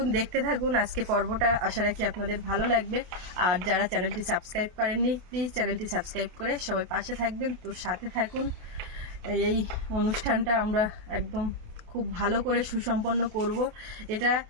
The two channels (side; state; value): left; late; 28 ms